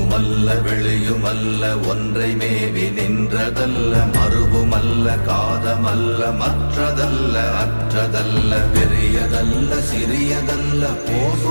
உள்ளுமல்ல வெளியுமல்ல ஒன்றை மேவி நின்றதல்ல மறுவுமல்ல காதமல்ல மற்றதல்ல அற்றதல்ல பெரியதல்ல சிறியதல்ல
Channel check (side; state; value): both; inverted; correlation -1.00